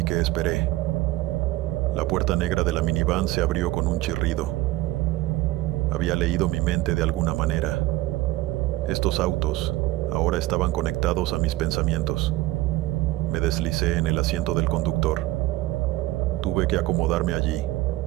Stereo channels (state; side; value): quieter; left; 17.5 dB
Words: que esperé. La puerta negra de la minivan se abrió con un chirrido. Había leído mi mente de alguna manera. Estos autos ahora estaban conectados a mis pensamientos. Me deslicé en el asiento del conductor. Tuve que acomodarme allí.